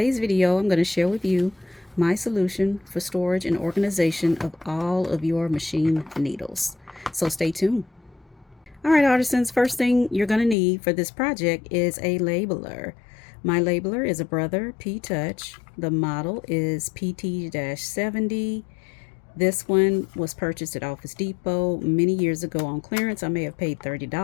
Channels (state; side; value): drops out; right; at 10.6 s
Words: video I'm going to share with you my solution for storage and organization of all of your machine needles. So stay tuned. Alright artisans, first thing you're going to need for this project is a labeler. My labeler is a Brother P-Touch. The model is PT-70. This one was purchased at Office Depot many years ago on clearance. I may have paid